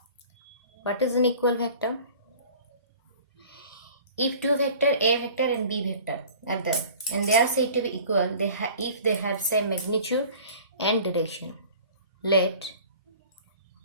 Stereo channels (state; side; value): inverted; both; correlation -0.45